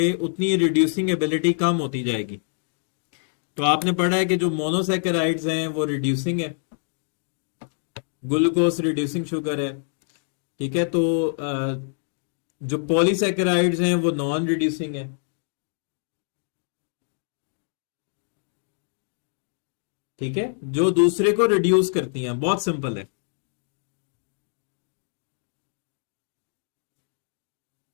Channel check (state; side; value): silent; right; digital silence